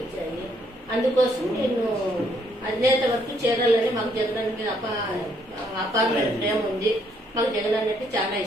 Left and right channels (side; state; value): both; normal; correlation 0.70